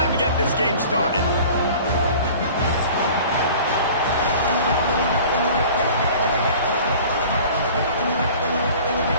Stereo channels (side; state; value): both; inverted; correlation -0.45